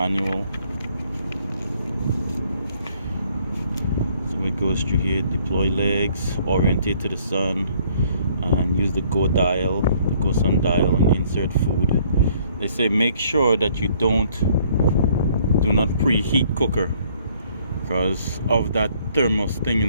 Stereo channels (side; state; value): both; inverted; correlation -0.62